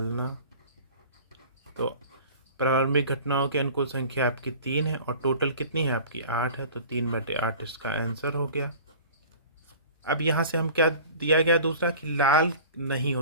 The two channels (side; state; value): both; inverted; correlation -0.42